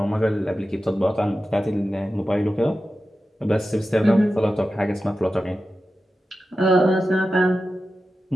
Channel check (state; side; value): normal; both; correlation 0.93